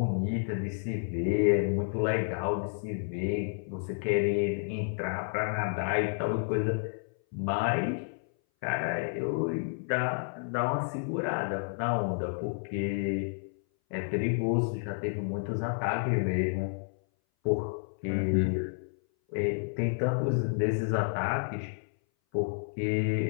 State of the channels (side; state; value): right; silent; 57 dB below the other